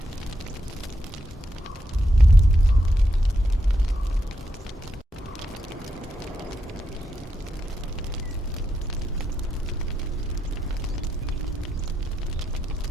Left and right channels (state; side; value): normal; both; correlation 0.83